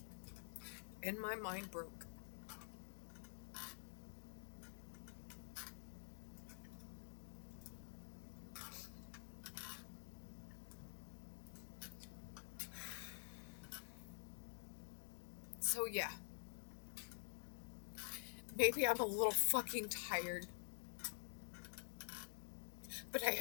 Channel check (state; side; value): silent; right; digital silence